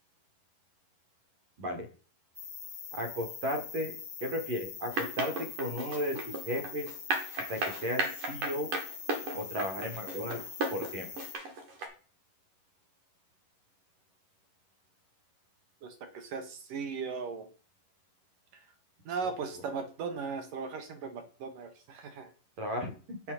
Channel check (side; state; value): left; late; 11 ms